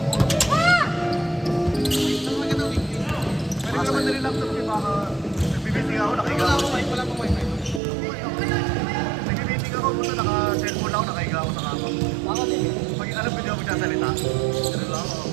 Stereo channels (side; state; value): left; drops out; at 7.8 s